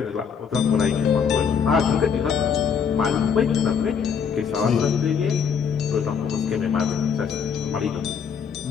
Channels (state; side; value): quieter; right; 6.8 dB